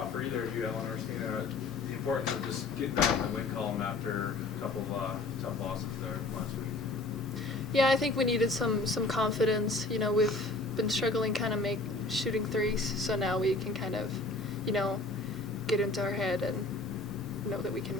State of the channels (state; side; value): quieter; right; 3.2 dB